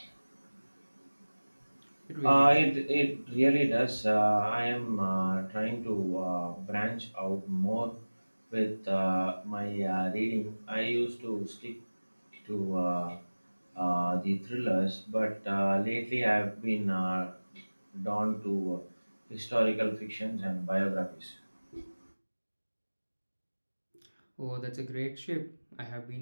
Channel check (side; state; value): both; inverted; correlation -1.00